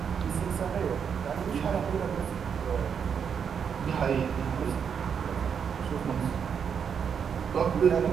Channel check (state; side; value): quieter; left; 7.1 dB